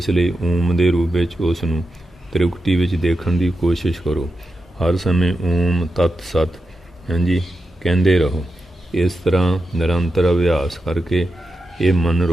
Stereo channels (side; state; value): both; normal; correlation 0.89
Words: ਲਈ ਓਮ ਦੇ ਰੂਪ ਵਿੱਚ ਉਸ ਨੂੰ ਤ੍ਰਿਕੁਟੀ ਵਿੱਚ ਦੇਖਣ ਦੀ ਕੋਸ਼ਿਸ਼ ਕਰੋ। ਹਰ ਸਮੇਂ ਓਮ ਤਤ ਸਤ ਹਾਂਜੀ ਕਹਿੰਦੇ ਰਹੋ। ਇਸ ਤਰ੍ਹਾਂ ਨਿਰੰਤਰ ਅਭਿਆਸ ਕਰਕੇ ਇਹ ਮਨ